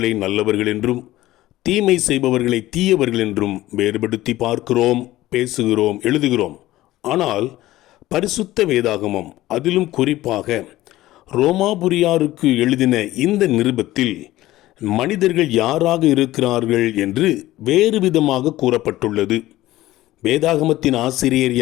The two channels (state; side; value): quieter; right; 16.2 dB